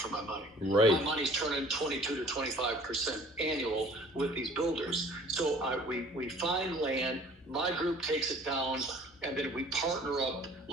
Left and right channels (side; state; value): both; normal; correlation 0.51